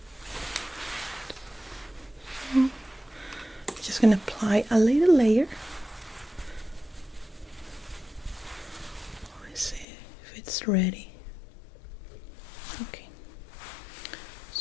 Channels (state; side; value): drops out; right; at 9.9 s